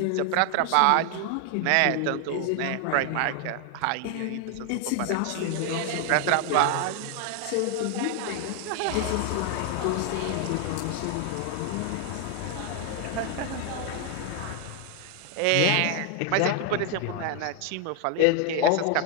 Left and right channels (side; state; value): both; different; correlation 0.00